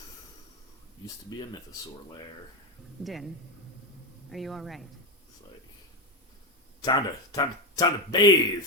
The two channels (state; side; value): normal; both; correlation 0.11